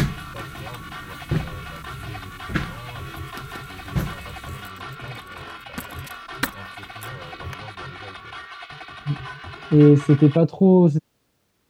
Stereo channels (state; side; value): identical; both; correlation 1.00